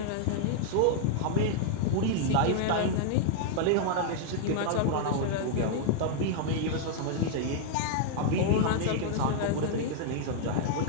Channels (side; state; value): both; different; correlation -0.01